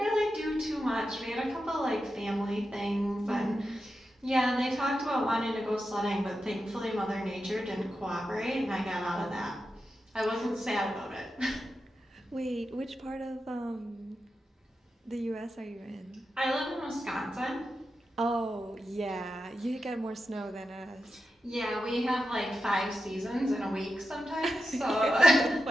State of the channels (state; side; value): normal; both; correlation 0.89